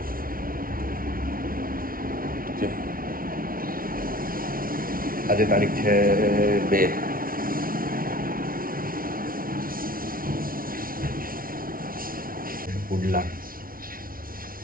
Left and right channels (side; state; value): left; late; 0.42 ms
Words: આજે તારીખ છે 2. પુડલા